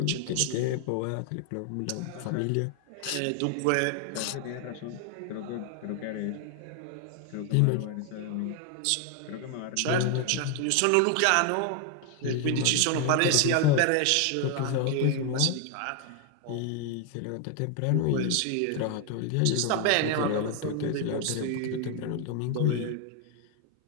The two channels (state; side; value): different; both; correlation 0.00